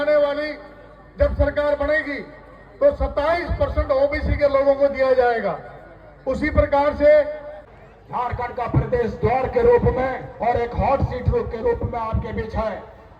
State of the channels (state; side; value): identical; both; correlation 1.00